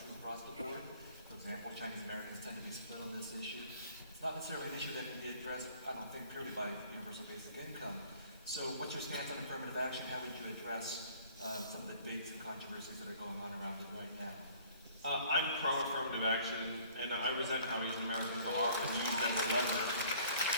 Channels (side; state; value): both; inverted; correlation -0.55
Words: true across the board. For example, Chinese Americans tend to be split on this issue. It's not necessarily an issue that can be addressed, I don't think, purely by universal basic income. So what's your stance on affirmative action? How would you address some of the debates and controversies that are going on around it right now? I'm pro-affirmative action, and I resent how Asian Americans are often used as a lever.